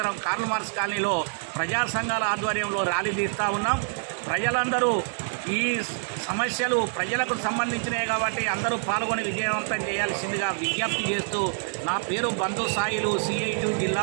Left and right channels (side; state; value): left; silent; digital silence